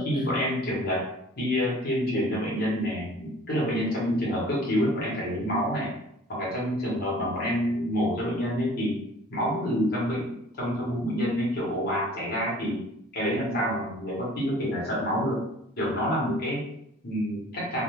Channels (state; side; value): normal; both; correlation 0.49